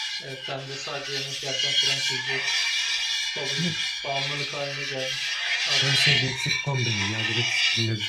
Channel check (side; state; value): both; identical; correlation 1.00